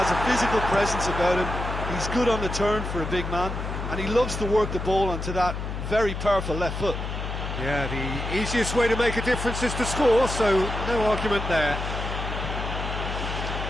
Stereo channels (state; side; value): noise; left; hum, 5 dB below the sound